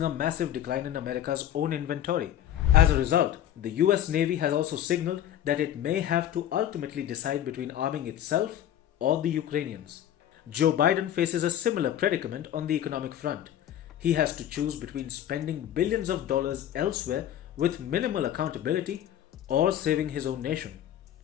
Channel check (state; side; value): quieter; right; 11.2 dB